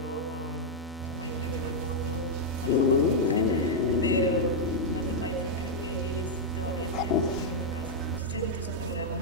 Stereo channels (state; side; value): normal; both; correlation -0.05